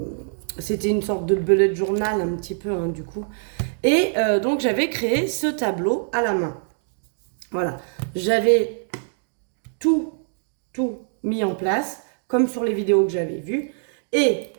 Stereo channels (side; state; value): left; silent; digital silence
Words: C'était une sorte de bullet journal un petit peu hein, du coup. Et donc j'avais créé ce tableau à la main. Voilà, j'avais tout, tout mis en place, comme sur les vidéos que j'avais vues. Et